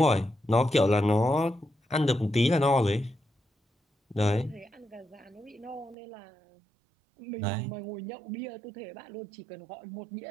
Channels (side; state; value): left; drops out; at 6.0 s